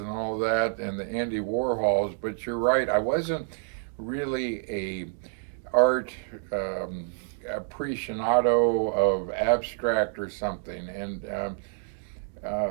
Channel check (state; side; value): silent; left; digital silence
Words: all that, and the Andy Warhols. But you're right, I wasn't really a art aficionado of abstract or something, and